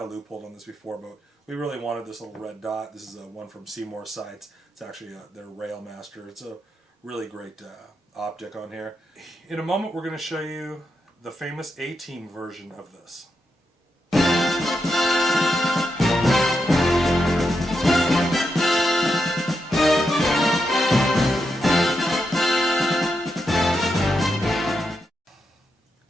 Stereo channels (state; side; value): normal; both; correlation 0.85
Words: a loophole on this before, but we really wanted this little red dot. This is one from Seymour Sights. It's actually their Rail Master. It's a really great optic on here. In a moment we're going to show you the famous A-Team version of this.